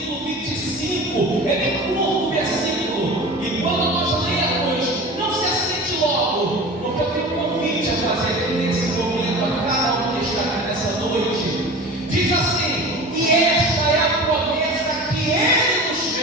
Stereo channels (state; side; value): normal; both; correlation 0.35